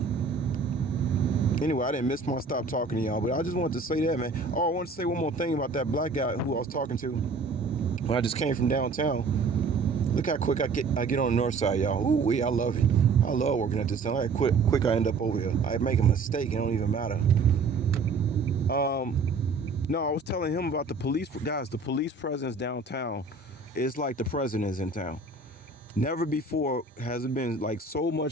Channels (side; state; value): left; quieter; 4.1 dB